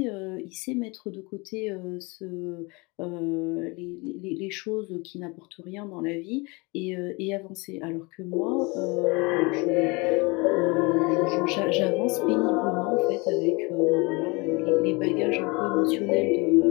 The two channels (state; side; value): quieter; right; 27.2 dB